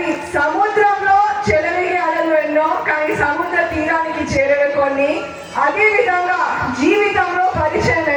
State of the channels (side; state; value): both; identical; correlation 1.00